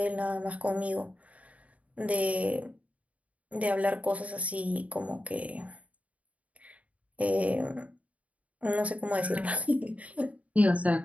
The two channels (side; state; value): left; late; 0.068 ms